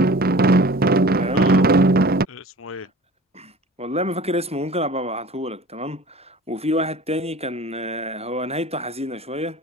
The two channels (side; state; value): both; normal; correlation 0.42